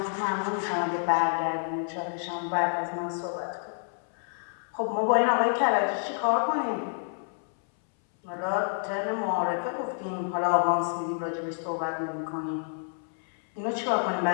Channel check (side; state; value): right; silent; 59 dB below the other